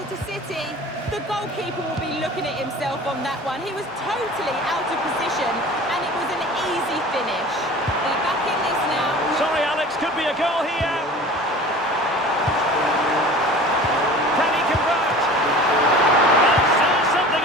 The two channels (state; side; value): normal; both; correlation 0.41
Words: City. The goalkeeper will be looking at himself on that one. He was totally out of position, and it was an easy finish. They're back in this now. Sorry, Alex, could be a goal here. Can he convert? Is there something